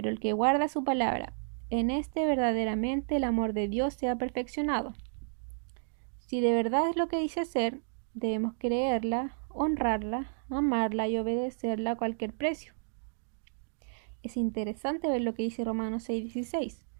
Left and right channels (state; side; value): silent; left; digital silence